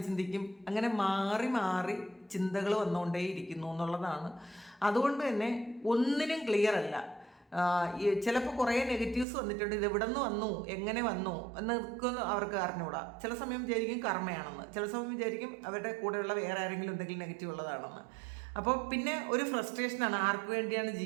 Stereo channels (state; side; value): drops out; left; at 9.2 s